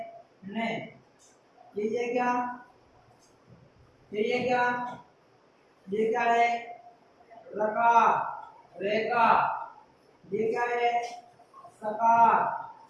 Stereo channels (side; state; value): both; identical; correlation 1.00